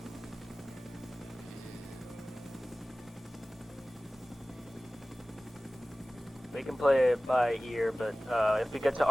We can play it by ear, but if we get to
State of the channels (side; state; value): both; normal; correlation 0.97